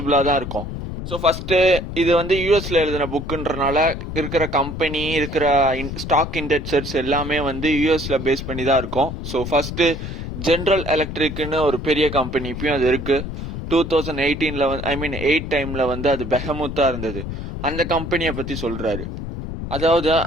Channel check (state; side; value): noise; left; rumble, 7 dB below the sound